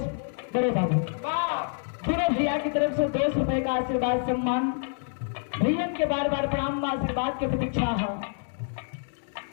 बड़े बाबू पूरे भैया की तरफ से 200 रुपए का आशीर्वाद सम्मान। भैया के बार बार प्रणाम, आशीर्वाद की प्रतीक्षा है।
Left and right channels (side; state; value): right; silent; digital silence